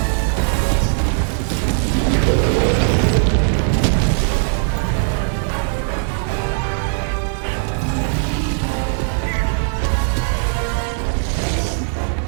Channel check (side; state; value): left; silent; digital silence